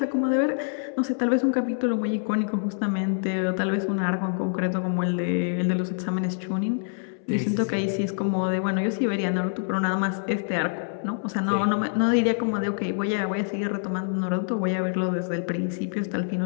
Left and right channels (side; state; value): right; silent; 61 dB below the other